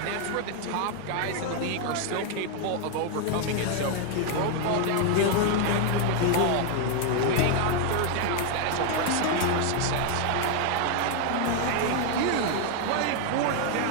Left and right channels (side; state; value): both; different; correlation 0.00